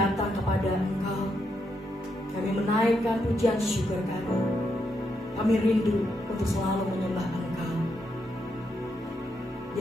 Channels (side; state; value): both; normal; correlation 0.80